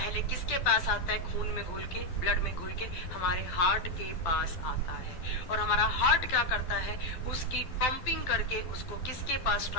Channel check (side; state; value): right; late; 12 ms